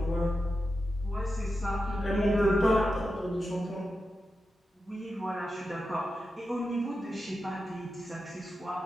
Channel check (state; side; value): normal; both; correlation 0.90